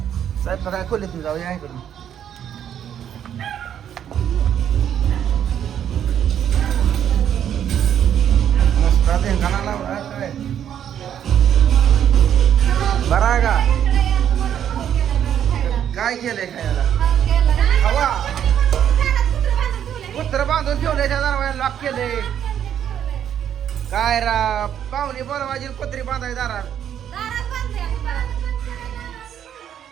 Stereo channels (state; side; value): quieter; left; 9.6 dB